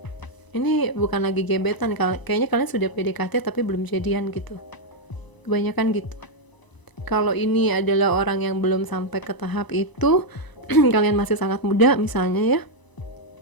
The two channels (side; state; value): right; late; 1.0 ms